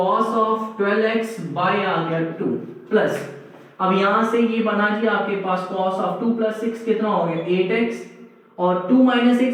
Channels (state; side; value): identical; both; correlation 1.00